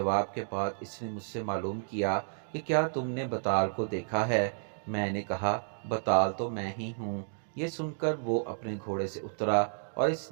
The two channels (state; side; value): silent; left; digital silence